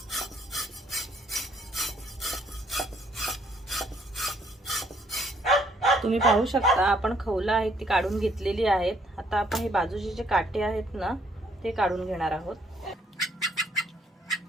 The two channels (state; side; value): normal; both; correlation 0.67